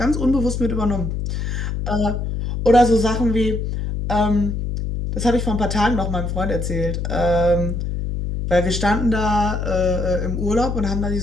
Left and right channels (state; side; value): noise; left; hum, 3 dB below the sound